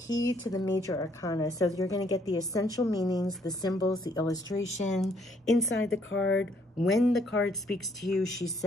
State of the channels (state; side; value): normal; both; correlation 0.67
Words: to the major arcana. So you're going to get the essential meanings, the symbols, the illustration inside the card. When the card speaks to you, she